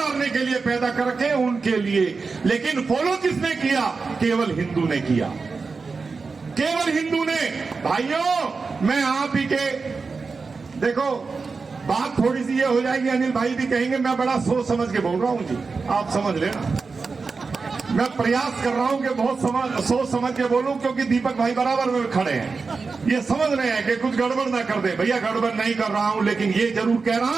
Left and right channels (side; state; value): left; quieter; 4.5 dB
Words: के लिए पैदा कर रखे, उनके लिए। लेकिन फॉलो किसने किया? केवल हिंदू ने किया, केवल हिंदू ने। भाइयों, मैं आप ही के, देखो बात थोड़ी सी ये हो जाएगी, अनिल भाई भी कहेंगे मैं बड़ा सोच समझ के बोल रहा हूँ जी, आप समझ लेना। मैं प्रयास कर रहा हूं कि बहुत सोच समझ के बोलूं, क्योंकि दीपक भाई बराबर में खड़े हैं, ये समझ रहे हैं कि कुछ गड़बड़ ना कर दे। भैया गड़बड़ नहीं कर रहा हूं, लेकिन ये जरूर कह